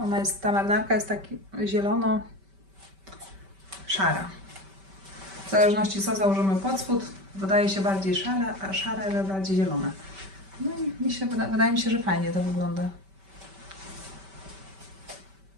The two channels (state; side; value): late; left; 5.2 ms